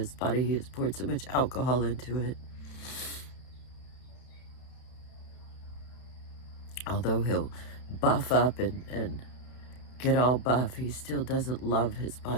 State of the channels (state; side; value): late; right; 31 ms